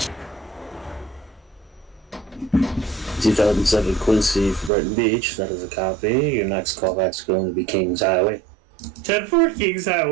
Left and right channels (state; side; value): drops out; left; at 4.7 s